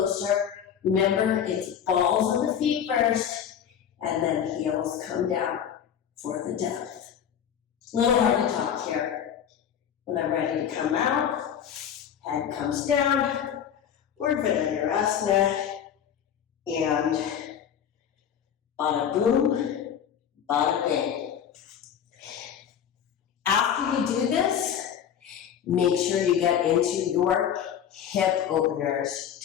Remember, it's balls on the feet first, and then heels come down for the depth. A little hard to talk here. When I'm ready to come out, head comes down, urdhva dhanurasana, and bada boom, bada bing. After you do this, make sure you get into your hip openers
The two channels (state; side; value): quieter; right; 8.8 dB